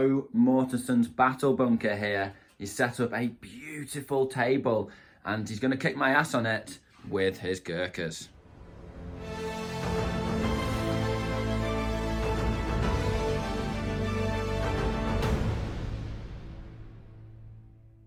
Mortensen's battle bunker here. He's set up a beautiful table and he's going to kick my ass on it with his Gurkhas.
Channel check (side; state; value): both; identical; correlation 1.00